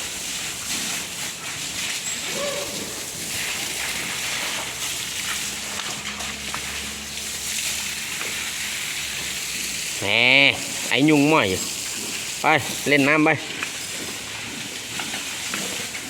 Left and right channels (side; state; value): both; identical; correlation 1.00